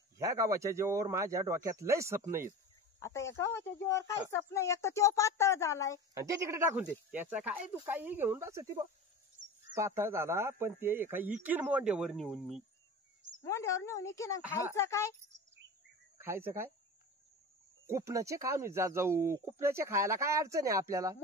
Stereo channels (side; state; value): both; normal; correlation 0.32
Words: ह्या गावाच्या जीवावर माझ्या डोक्यात लय स्वप्न आहेत. आता या गावाच्या जीवावर काही स्वप्न. एक तर तो पातळ झालाय. आणि ते तिकडे टाकून दे. त्याचा काय तू काही घेऊन बस ती पातळ झाला पण ते एका इकीन मोंड्यावर नेऊन मी. मोंड्यावर नेऊन इकीन. खायचं काय? खायचं काय? कुपनाचे खाऊन जाऊ. कुपनाचे खायला काय अडचण आहे आपल्याला?